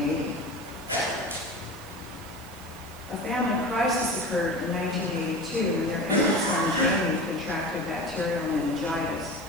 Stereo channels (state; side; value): noise; left; hiss, 22 dB below the sound